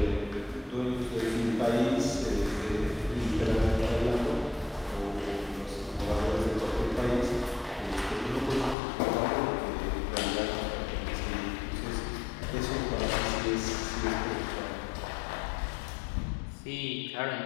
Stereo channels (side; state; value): right; drops out; at 8.8 s